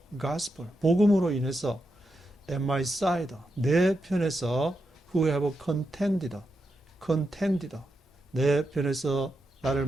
gospel, 복음으로 인해서 at my side, 내 편에서 who have contended, 내 편에서 나를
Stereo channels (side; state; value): both; normal; correlation 0.86